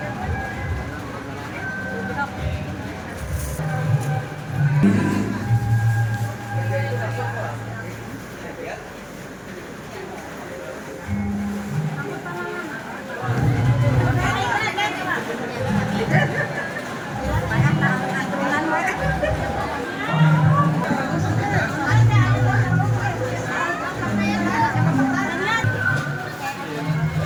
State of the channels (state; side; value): identical; both; correlation 1.00